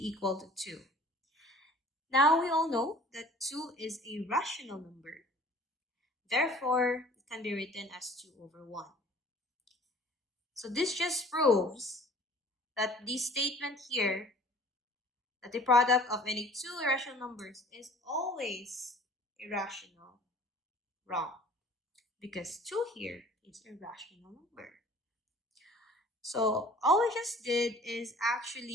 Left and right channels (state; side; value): normal; both; correlation 0.50